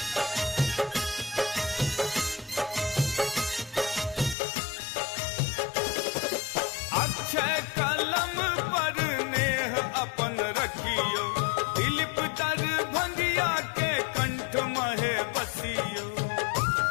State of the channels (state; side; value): drops out; right; at 4.4 s